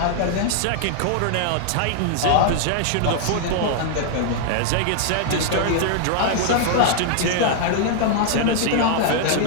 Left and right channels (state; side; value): different; both; correlation 0.00